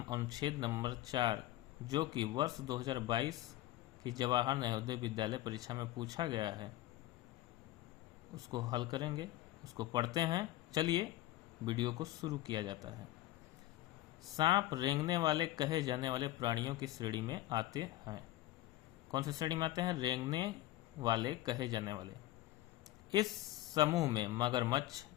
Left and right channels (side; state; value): right; quieter; 15.7 dB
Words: अनुच्छेद नंबर 4, जो कि वर्ष 2022 की जवाहर नवोदय विद्यालय परीक्षा में पूछा गया है, उसको हल करेंगे, उसको पढ़ते हैं। चलिए वीडियो को शुरू किया जाता है। सांप रेंगने वाले कहे जाने वाले प्राणियों की श्रेणी में आते हैं। कौन सी श्रेणी में आते हैं? रेंगने वाले कहे जाने वाले। इस समूह में मगरमच्छ,